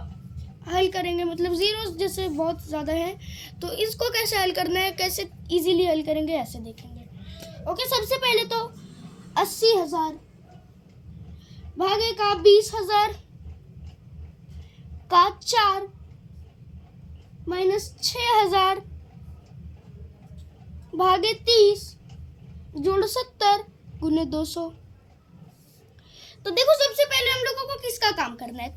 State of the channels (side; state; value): both; identical; correlation 1.00